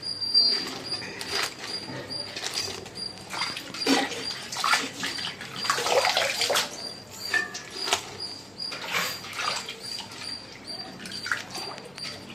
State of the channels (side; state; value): left; noise; hum, 29 dB below the sound